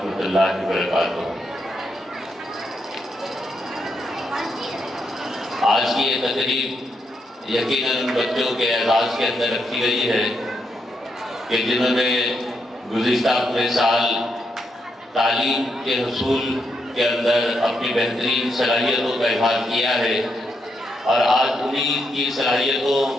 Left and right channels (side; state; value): both; normal; correlation 0.80